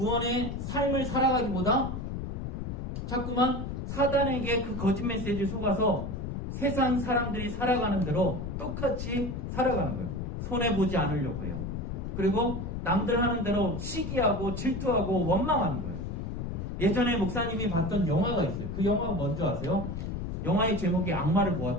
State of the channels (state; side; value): noise; left; rumble, 5 dB below the sound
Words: 삶을 살아가기보다 자꾸만 사단에게 그 거짓 메시지를 속아서 세상 사람들이 살아가는 대로 똑같이 살아가는 거예요. 손해보지 않으려고 해요. 그리고 남들 하는 대로 시기하고 질투하고 원망하는 거예요. 예전에 목사님이 봤던 영화가 있어요. 그 영화가 뭔지 아세요? 영화의 제목이 악마를